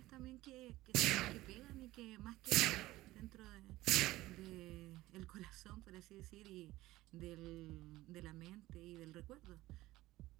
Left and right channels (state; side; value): quieter; left; 17.4 dB